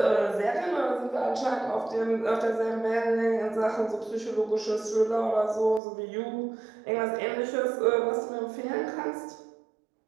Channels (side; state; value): left; drops out; at 5.8 s